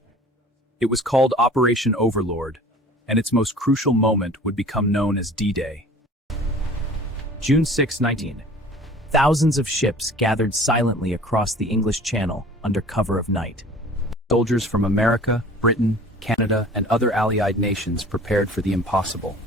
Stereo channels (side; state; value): both; normal; correlation 0.46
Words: It was called Operation Overlord, and its most crucial moment would become known as D-Day. June 6, 19. Thousands of ships gathered silently across the English Channel under cover of night. Soldiers from America, Britain, Canada, and other Allied nations prepared for the impossible.